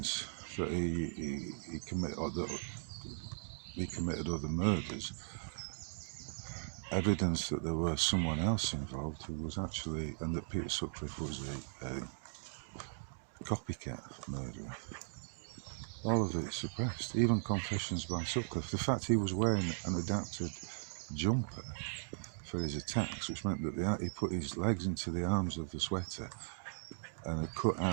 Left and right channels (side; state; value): left; silent; digital silence